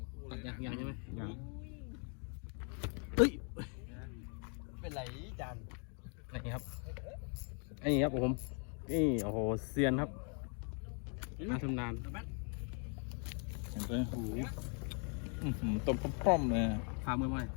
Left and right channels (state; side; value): quieter; right; 39.4 dB